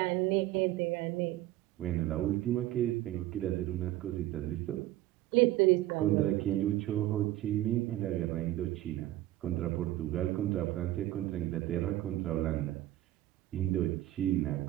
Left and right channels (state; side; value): quieter; left; 15.2 dB